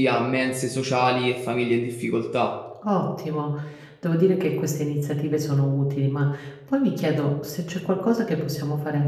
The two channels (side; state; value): both; identical; correlation 1.00